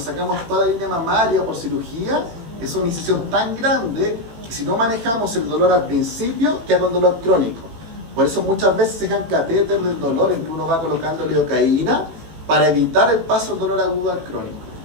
toda la línea mamaria por cirugía, es una incisión tan grande que si no manejamos el dolor al principio, queda con dolor crónico. Por eso muchas veces se dejan catéter del dolor en que uno va colocando lidocaína para evitar el paso del dolor agudo al crónico.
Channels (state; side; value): late; left; 18 ms